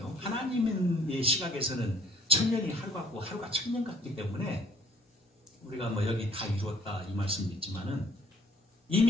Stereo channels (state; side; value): normal; both; correlation 0.59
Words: 하나님의 시각에서는 천년이 하루 같고 하루가 천년 같기 때문에 우리가 뭐 여기 다 이루었다 이 말씀도 있지만은